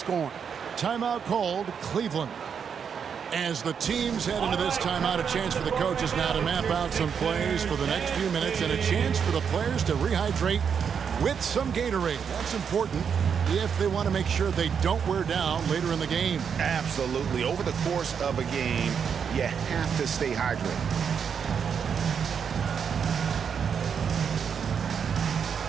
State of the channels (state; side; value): quieter; left; 7.0 dB